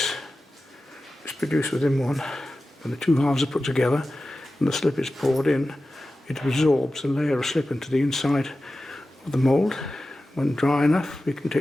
is produced within one. When the two halves are put together and the slip is poured in, it absorbs a layer of slip into the inside of the mould. When dry enough, we can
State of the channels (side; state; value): both; normal; correlation 0.94